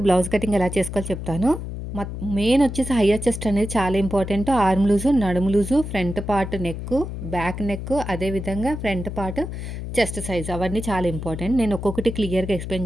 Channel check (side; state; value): left; noise; hum, 7 dB below the sound